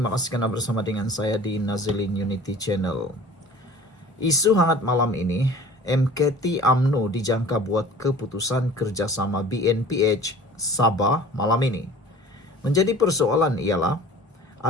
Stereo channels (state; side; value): normal; both; correlation 0.44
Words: kasih karena bersama dengan saya di Nazilin Unity Channel. Isu hangat malam ini, MKT UMNO dijangka buat keputusan kerjasama BNPH Sabah malam ini. Menjadi persoalan ialah,